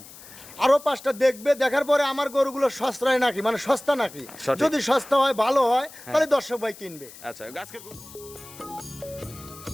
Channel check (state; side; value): noise; left; hiss, 18 dB below the sound